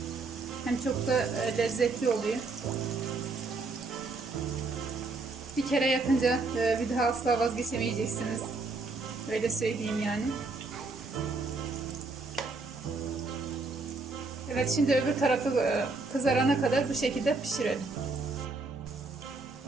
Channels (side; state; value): left; quieter; 3.7 dB